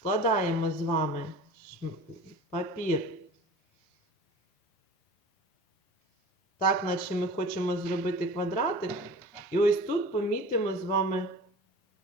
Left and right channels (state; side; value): normal; both; correlation 0.40